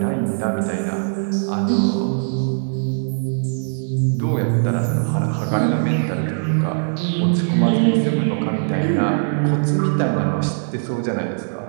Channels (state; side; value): silent; left; digital silence